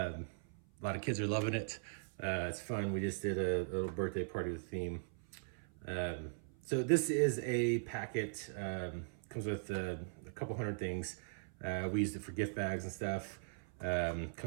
lot of kids are loving it. It's fun. We just did a little birthday party with theme. So this is a packet. Comes with a couple hundred things. We used it for gift bags and stuff.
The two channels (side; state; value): left; silent; 51 dB below the other